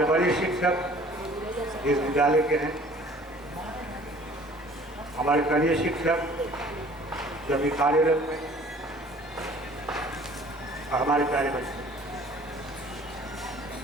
बड़े शिक्षक इस विद्यालय के हैं, हमारे कनीय शिक्षक जो भी कार्यरत हैं, और हमारे प्यारे बच्चे।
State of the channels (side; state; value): both; normal; correlation 0.52